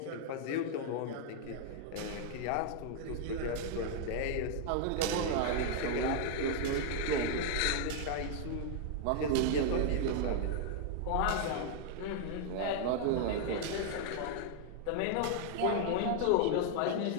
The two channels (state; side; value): different; both; correlation 0.00